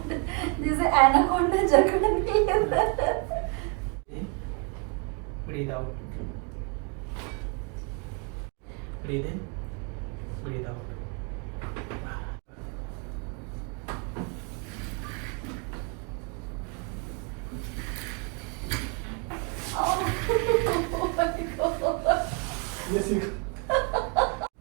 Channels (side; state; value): left; quieter; 32.8 dB